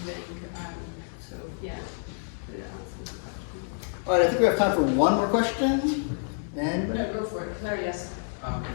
So, yeah. All right, I think we have time for one more question. Anybody? No, go for it. Claire, yes.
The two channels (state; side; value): silent; right; digital silence